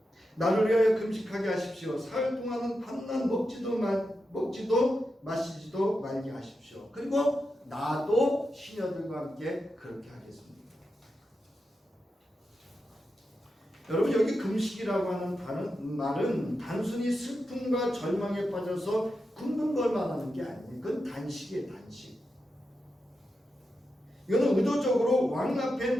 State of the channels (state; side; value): normal; both; correlation 0.88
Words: 나를 위하여 금식하게 하십시오. 사흘 동안은 밤낮 먹지도 마시지도 말게 하십시오. 그리고 나도 시녀들과 함께 그렇게 하겠습니다. 여러분, 여기 금식이라고 하는 말은 단순히 슬픔과 절망에 빠져서 굶는 걸 말하는 게 아니에요. 그건 단식이에요. 단식. 이거는 의도적으로 왕 앞에